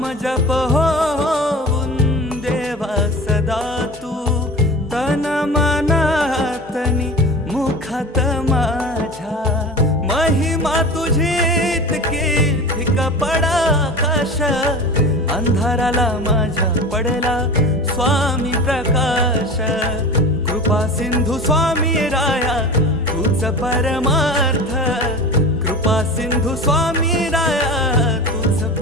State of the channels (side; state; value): both; normal; correlation 0.34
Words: जप होऊन देवा सदा तू तन मनातनी मुखात माझ्या महिमा तुझी इतकी फिका पडा आकाश अंधाराला माझ्या पडला स्वामी प्रकाश कृपा सिंधू स्वामी राया तूच परमार्थ कृपा सिंधू स्वामी राया तूच